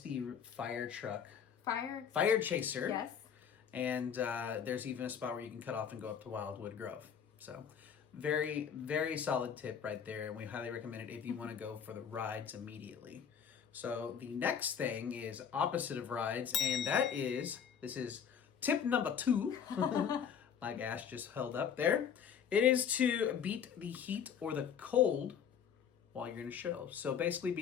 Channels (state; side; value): quieter; right; 7.8 dB